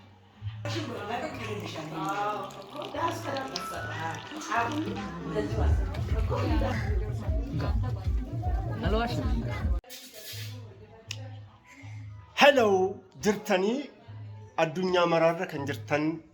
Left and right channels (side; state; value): both; identical; correlation 1.00